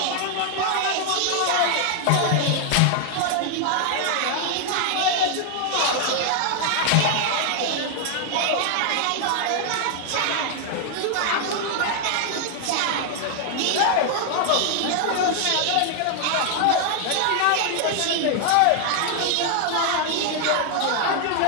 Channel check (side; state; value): both; different; correlation 0.00